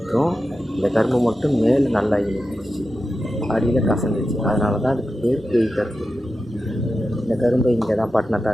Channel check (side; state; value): both; normal; correlation 0.91